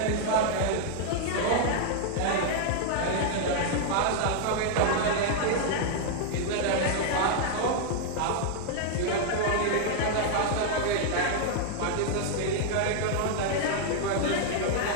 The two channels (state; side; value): different; both; correlation 0.00